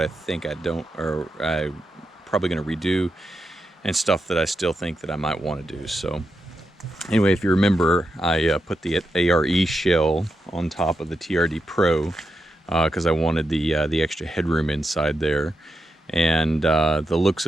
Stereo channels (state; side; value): normal; both; correlation 0.86